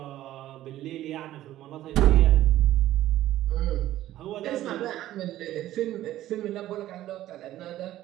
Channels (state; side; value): quieter; left; 14.0 dB